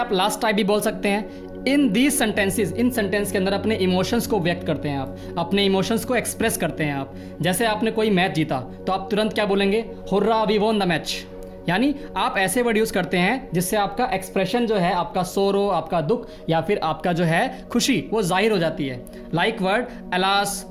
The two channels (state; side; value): identical; both; correlation 1.00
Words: लास्ट टाइप भी बोल सकते हैं। In these sentences, in sentence के अंदर अपने इमोशंस को व्यक्त करते हैं आप, अपने इमोशंस को एक्सप्रेस करते हैं आप। जैसे आपने कोई मैच जीता तो आप तुरंत क्या बोलेंगे, hurrah we won the match. यानी आप ऐसे वर्ड यूज़ करते हैं जिससे आपका एक्सप्रेशन जो है, आपका सोरो, आपका दुख या फिर आपका जो है खुशी, वो जाहिर हो जाती है। Like word alas,